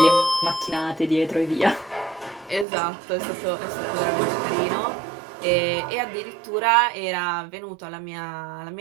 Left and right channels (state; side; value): drops out; left; at 2.7 s